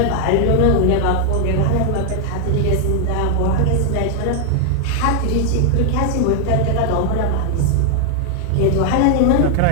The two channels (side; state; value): both; different; correlation 0.00